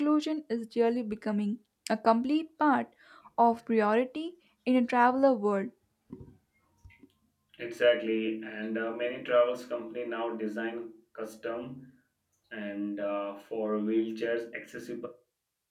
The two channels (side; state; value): both; identical; correlation 1.00